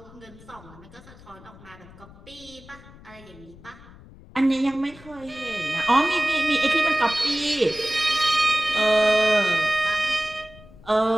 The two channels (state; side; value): noise; left; rumble, 21 dB below the sound